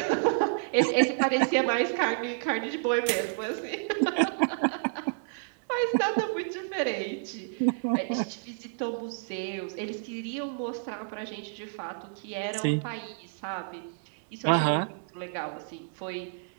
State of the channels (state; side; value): silent; left; digital silence